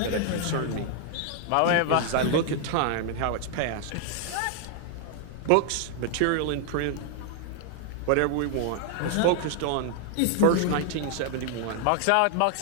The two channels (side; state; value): both; different; correlation 0.00